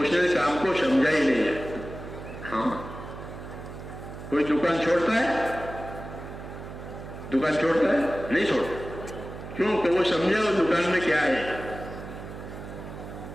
نے کام کو سمجھا ہی نہیں ہے. ہاں, کوئی دکان چھوڑتا ہے, دکان چھوڑتا ہے نہیں چھوڑتا, کیوں کہ وہ سمجھا وہ دکان میں کیا ہے.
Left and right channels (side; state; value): right; noise; hum, 11 dB below the sound